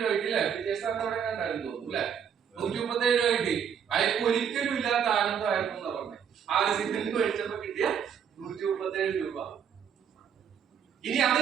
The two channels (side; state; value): left; quieter; 7.9 dB